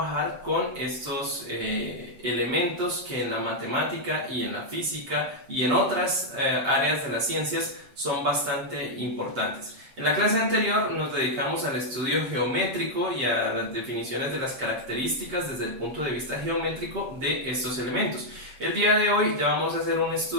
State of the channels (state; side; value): late; left; 7.7 ms